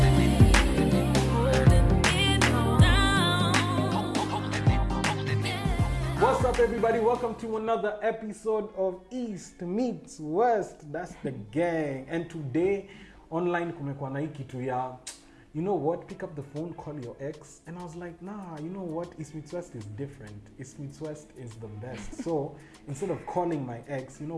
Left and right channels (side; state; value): both; identical; correlation 1.00